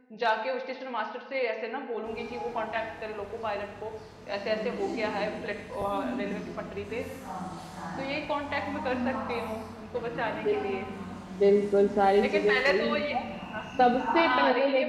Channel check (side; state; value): both; identical; correlation 1.00